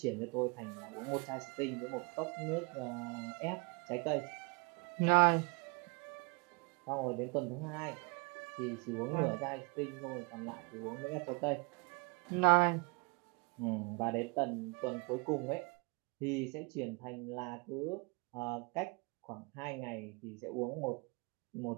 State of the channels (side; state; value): left; quieter; 31.2 dB